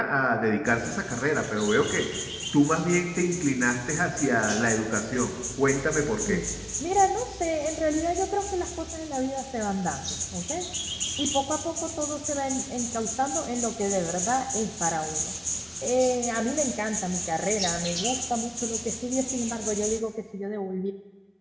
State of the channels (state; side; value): identical; both; correlation 1.00